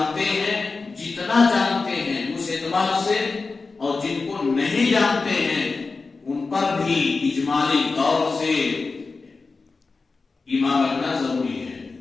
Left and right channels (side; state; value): right; quieter; 4.1 dB